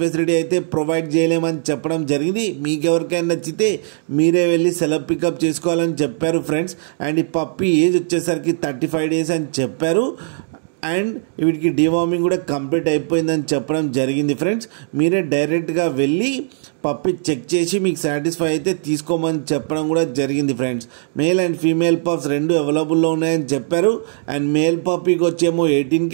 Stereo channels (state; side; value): silent; left; digital silence